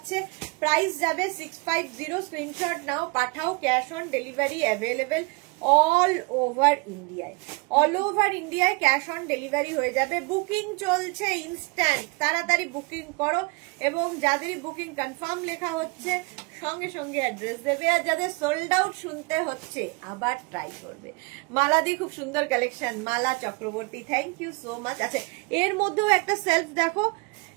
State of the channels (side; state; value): left; quieter; 28.9 dB